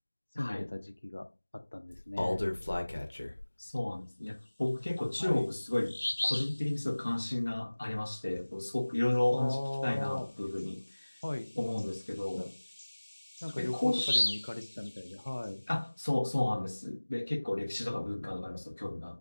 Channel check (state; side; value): inverted; both; correlation -1.00